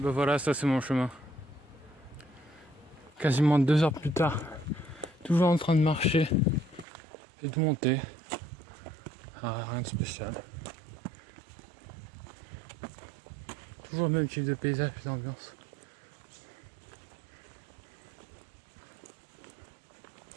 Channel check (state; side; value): drops out; left; at 6.9 s